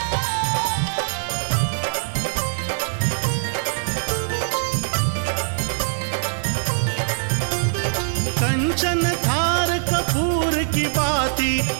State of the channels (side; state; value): left; silent; digital silence